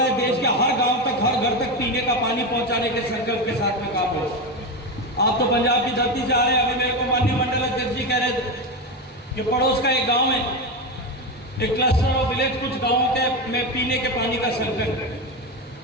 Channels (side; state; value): both; normal; correlation 0.16